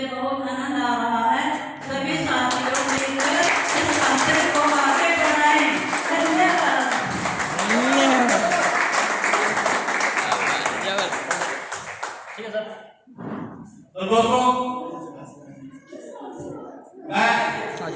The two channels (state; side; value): identical; both; correlation 1.00